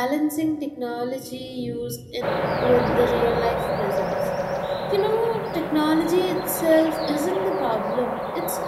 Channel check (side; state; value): both; identical; correlation 1.00